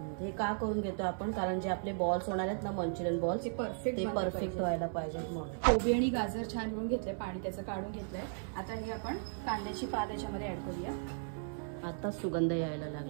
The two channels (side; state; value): left; silent; 54 dB below the other